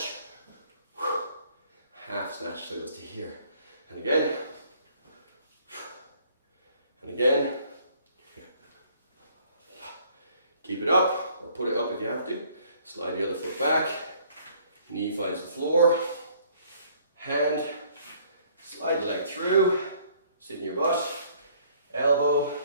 half snatch, so it goes to here. And again, and again. Keep it up, or put it up if you have to. Slide the other foot back, knee finds the floor, hand, slide the leg through, sit in your butt, elbow,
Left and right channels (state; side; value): inverted; both; correlation -0.61